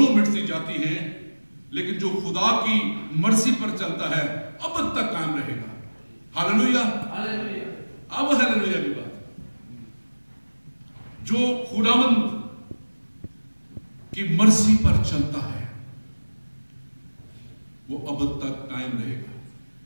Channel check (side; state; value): both; inverted; correlation -1.00